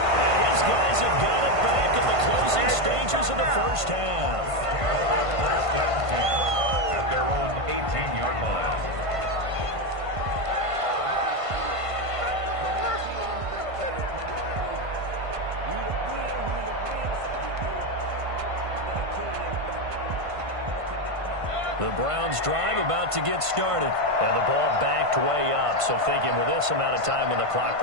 And his guys have got it back at the closing stages of the first half. First and 10 at their own 18-yard line. The Browns drive about to get started. And the ball backed way up. So thinking with this amount of time on the clock,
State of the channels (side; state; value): left; late; 1.5 ms